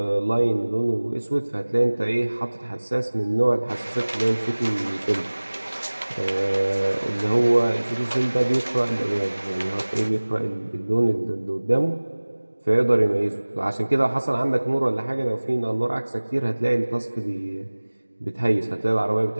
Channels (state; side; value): inverted; both; correlation -1.00